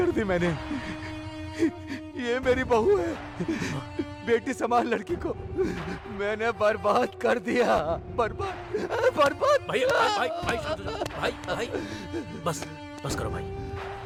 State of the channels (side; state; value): both; identical; correlation 1.00